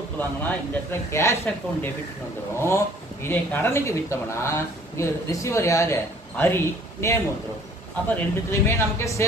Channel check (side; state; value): both; normal; correlation 0.56